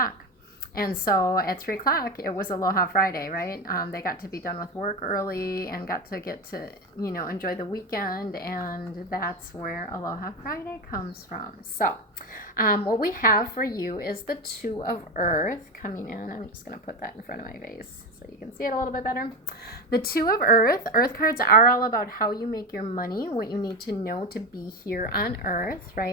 And so at 3 o'clock, it was Aloha Friday, right? They got to be done with work early and got to get to, enjoy the weekend. And that's where Aloha Friday comes from. So what we have for you is the Two of Earth coming in. I'm just going to put that in front of my face so you can see it a little bit better. The Two of Earth. Earth cards are all about how you make your money, what you need to know to be here on Earth,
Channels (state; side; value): normal; both; correlation 0.17